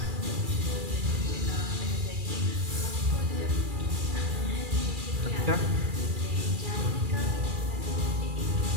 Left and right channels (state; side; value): late; left; 2.4 ms